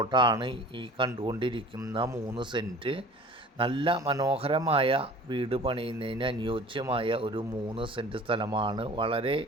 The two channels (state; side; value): normal; both; correlation 0.44